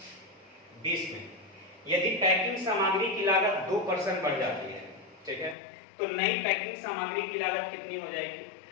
20 में, यदि पैकिंग सामग्री की लागत 2% बढ़ जाती है, ठीक है, तो नई पैकिंग सामग्री की लागत कितनी हो जाएगी?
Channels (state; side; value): drops out; right; at 5.6 s